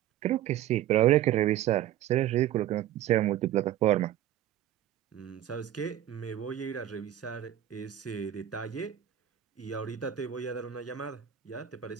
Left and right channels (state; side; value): quieter; left; 11.9 dB